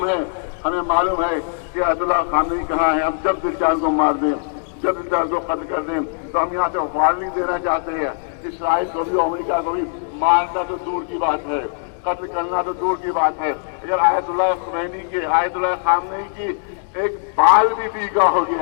ہے، ہمیں معلوم ہے کہ آیت اللہ خامنئی کہاں ہے. ہم جب بھی چاہیں کو مار دیں، جب بھی چاہیں کو قتل کر دیں. تو ہم یہاں سے وارننگ دینا چاہتے ہیں اسرائیل کو بھی، امریکہ کو بھی. مارنا تو دور کی بات ہے، قتل کرنا تو دور کی بات ہے. اگر آیت اللہ خمینی کی، آیت اللہ خامنئی کی ایک بال بھی پیکا ہو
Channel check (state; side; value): silent; right; 59 dB below the other